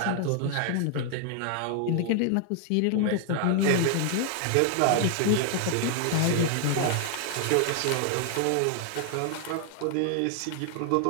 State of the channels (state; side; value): different; both; correlation 0.00